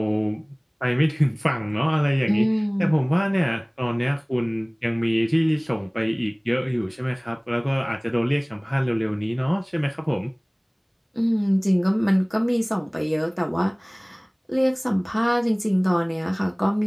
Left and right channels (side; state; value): both; identical; correlation 1.00